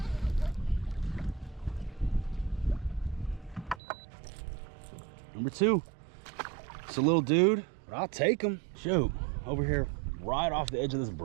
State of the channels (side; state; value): left; drops out; at 3.8 s